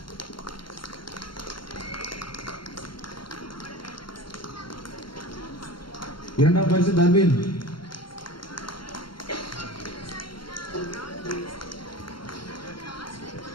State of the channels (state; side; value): late; right; 0.72 ms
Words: இரண்டாம் பரிசு தர்வின்.